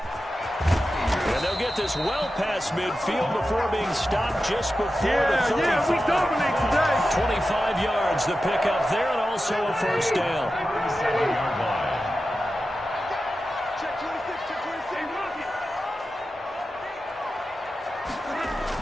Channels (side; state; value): both; normal; correlation 0.92